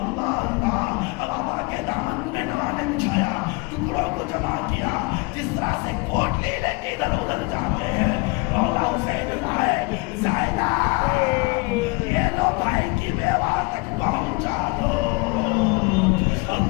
اللہ، اب ابا کے دامن میں نوا نے بچھایا، ٹکڑوں کو جمع کیا، جس طرح سے کوٹ لے لے کے ادھر ادھر جاتے ہیں۔ مولا حسین آئے، زینب یہ لو بھائی کی بیوہ تک پہنچا دو۔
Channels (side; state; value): right; quieter; 27.2 dB